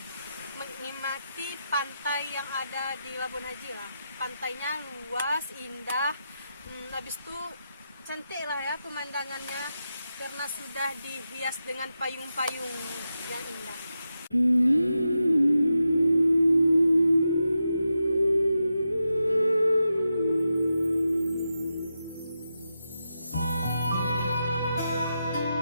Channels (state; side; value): inverted; both; correlation -0.88